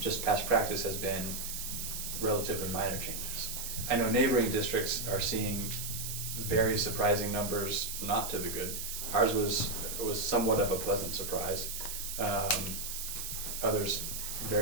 past practice has been relatively minor changes. I know neighboring districts are seeing very surprising numbers, not to the good. Ours was somewhat of a pleasant surprise. Others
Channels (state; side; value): noise; right; hiss, 5 dB below the sound